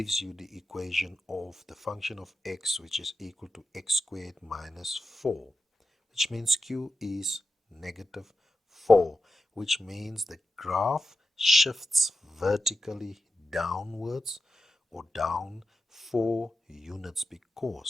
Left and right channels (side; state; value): both; normal; correlation 0.90